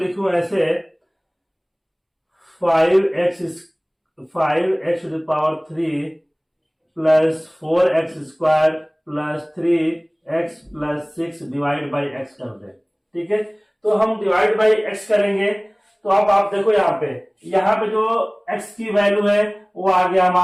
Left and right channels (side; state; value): both; identical; correlation 1.00